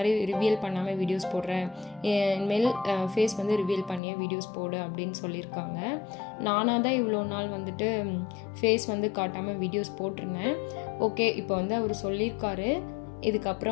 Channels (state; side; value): drops out; right; at 4.0 s